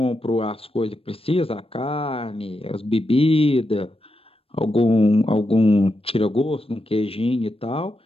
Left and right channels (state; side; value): late; right; 0.28 ms